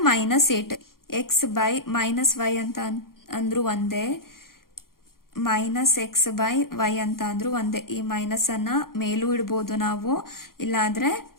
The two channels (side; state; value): right; late; 0.92 ms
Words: minus 8. X by minus Y ಅಂತ ಅಂದ್ರು ಒಂದೇ, ಮೈನಸ್ ಎಕ್ಸ್ ಬೈ ವೈ ಅಂತ ಅಂದ್ರು ಒಂದೇ. ಈ ಮೈನಸ್ ಅನ್ನ ಮೇಲೂ ಇಡ್ಬೋದು ನಾವು, ಇಲ್ಲಾದ್ರೆ